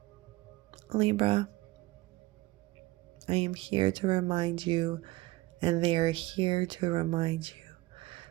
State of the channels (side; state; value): left; quieter; 19.7 dB